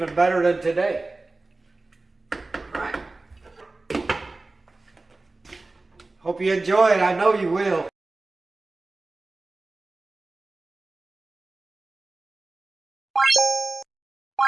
better than today. All right. Hope you enjoy it. I know you will.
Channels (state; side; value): quieter; left; 3.3 dB